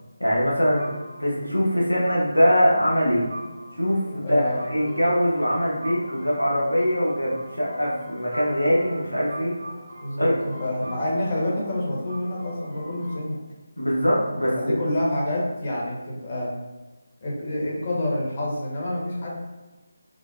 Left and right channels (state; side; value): inverted; both; correlation -0.93